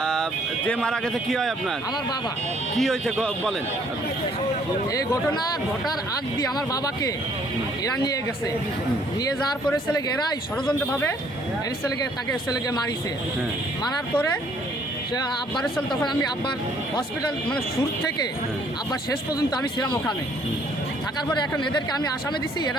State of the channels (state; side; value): normal; both; correlation 0.63